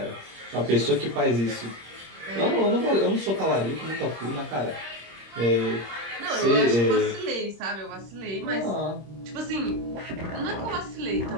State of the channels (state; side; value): late; left; 26 ms